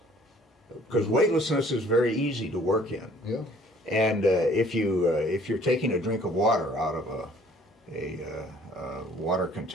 because weightlessness is very easy to work in. Yeah. And if you're taking a drink of water out of a water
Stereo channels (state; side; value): normal; both; correlation 0.56